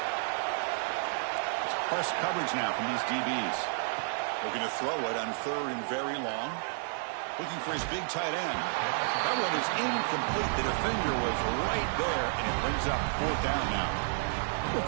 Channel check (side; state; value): left; silent; digital silence